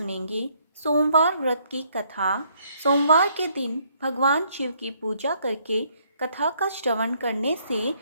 सोमवार व्रत की कथा। सोमवार के दिन भगवान शिव की पूजा करके कथा का श्रवण करने से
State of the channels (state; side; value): inverted; both; correlation -0.68